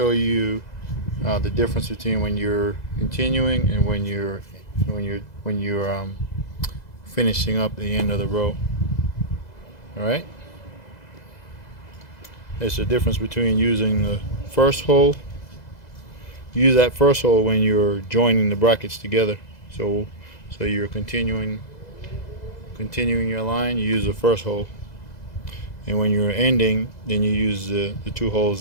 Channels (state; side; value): late; right; 2.0 ms